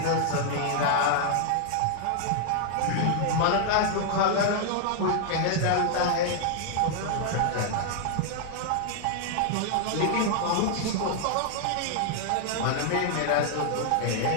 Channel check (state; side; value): different; both; correlation -0.01